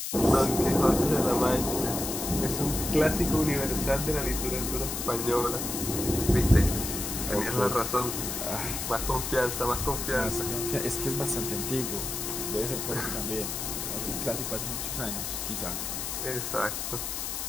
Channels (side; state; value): left; noise; hiss, 4 dB below the sound